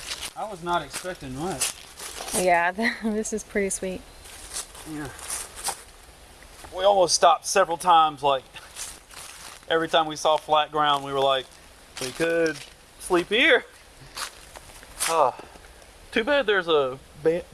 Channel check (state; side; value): identical; both; correlation 1.00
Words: I was not expecting much. Yeah, this is pretty sweet. Yeah. We almost stopped several times. Like every time we saw flat ground, we were like, we could sleep here. Too bad there's a